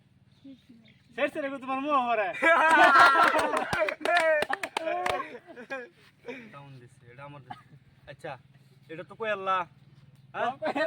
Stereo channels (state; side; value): identical; both; correlation 1.00